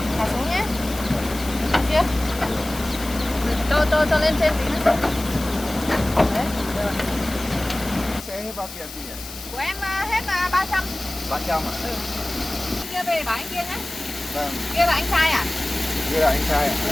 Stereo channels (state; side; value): noise; left; hiss, 13 dB below the sound